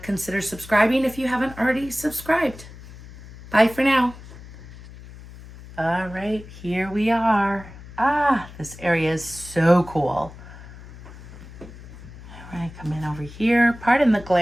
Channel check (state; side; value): noise; left; hum, 17 dB below the sound